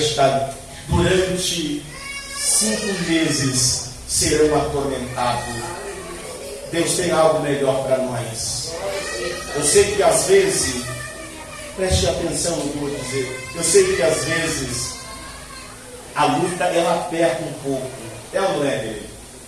durante 5 meses serão atormentados. Deus tem algo melhor para nós. Eu sei que às vezes, preste atenção no que eu vou dizer, eu sei que às vezes a luta ela aperta um pouco, é ou não é?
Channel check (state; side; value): identical; both; correlation 1.00